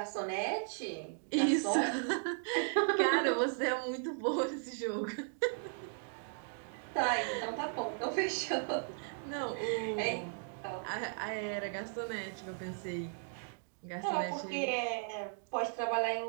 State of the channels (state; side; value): silent; left; 54 dB below the other